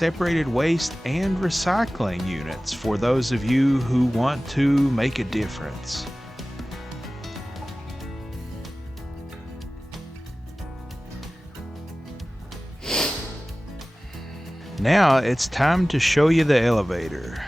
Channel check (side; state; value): both; normal; correlation 0.97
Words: waste and recycling units for those of you who want to make a difference. Now it's time to show you the elevator.